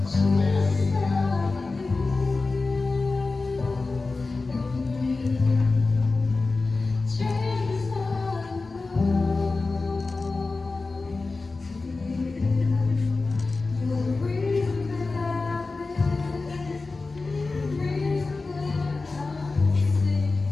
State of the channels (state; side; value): quieter; right; 3.7 dB